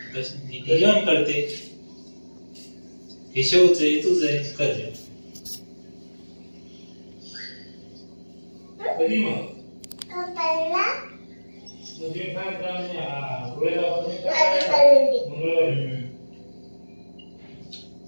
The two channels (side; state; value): both; inverted; correlation -1.00